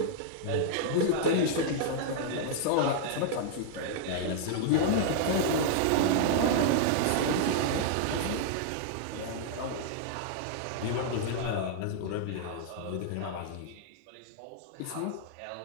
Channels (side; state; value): both; different; correlation -0.01